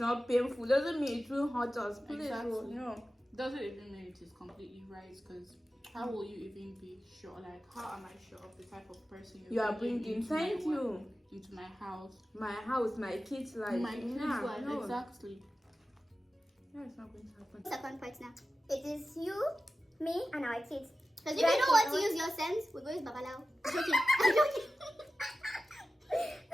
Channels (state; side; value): normal; both; correlation 0.94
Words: painful. Doesn't mean it will hurt us. Please, exactly. No. Doesn't even mean it is completely right because how will you even be sure? Like, how am I sure of the type of person you are bringing? Thank you. Into my house. My house, my kids' life. My kids' life, no. Exactly. No, it's not going to happen. Second partner. It is you, me, and our kids. Because if you don't want to use your sense, we'll go use Babalao. I'm joking. I'm joking.